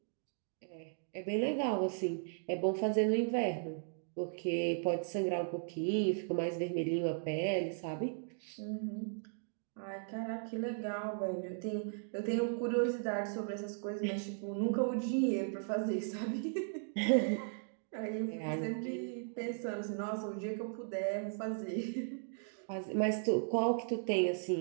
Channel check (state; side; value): silent; left; digital silence